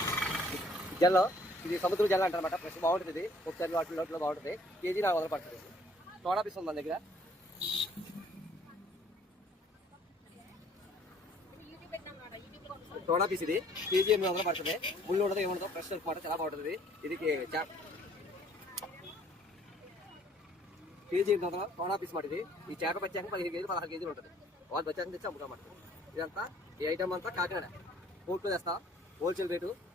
జల్లో ఇది సముద్ర జల్ల అంటారనమాట. ఫ్రెష్ బాగుంటుంది. ఇది పప్పు చేప వాటిలో బాగుంటుంది. కేజీ 400 పడుతుంది. సోడా పీస్ ఉంది మన దగ్గర. సోడా పీస్ ఇది కేజీ 800 పడుతుంది. ముళ్ళు ఉండదు ఏముండదు. ఫ్రెష్ మాట చాలా బాగుంటుంది. ఇది కేజీ 800 సోడా పీస్ మాట. ఇది ఈ చేప వచ్చాక 15 కేజీ 16 కేజీలు ఉంటుంది. వాళ్ళు వచ్చాక తెచ్చి అమ్ముతామాట. ఇదంతా ఈ ఐటమ్ అంతా కాకినాడ కోర్టు తెస్తా. హోల్సేల్ రేటు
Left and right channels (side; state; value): both; normal; correlation 0.59